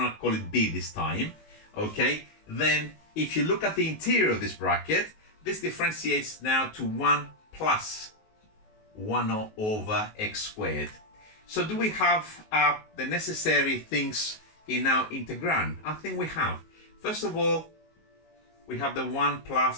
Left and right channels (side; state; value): right; late; 19 ms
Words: going to call it b this time, okay, then if you look at the interior of this bracket, this differentiates now to 1 plus 1 over x squared. So do we have the necessary things in our integrand? I think we have. First of all, we have the 1